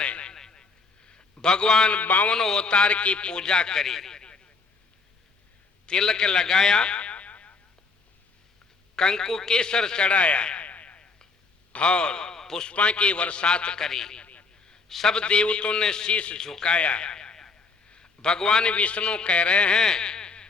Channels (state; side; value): quieter; right; 4.2 dB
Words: भगवान 52 अवतार की पूजा करी, तिलक लगाया, कंकु केसर चढ़ाया और पुष्पा की बरसात करी। सब देवताओं ने शीश झुकाया। भगवान विष्णु कह रहे हैं